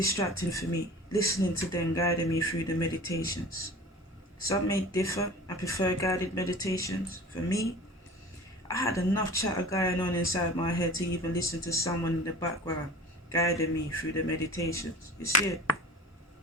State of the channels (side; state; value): both; normal; correlation 0.40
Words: for me, listening to them guiding me through the meditations. Some may differ and prefer guided meditations. For me, I had enough chatter going on inside my head to even listen to someone in the background guiding me through the meditations. You see it?